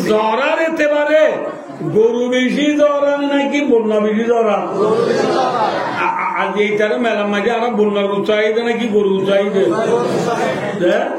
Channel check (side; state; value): both; identical; correlation 1.00